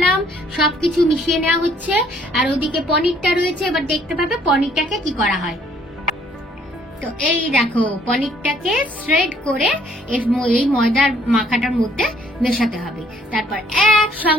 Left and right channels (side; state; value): both; normal; correlation 0.63